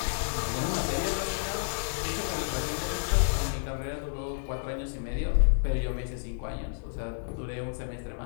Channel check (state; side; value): silent; right; digital silence